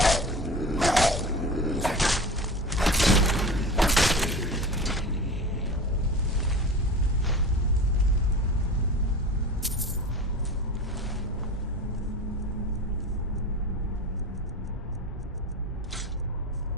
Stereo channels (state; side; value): normal; both; correlation 0.33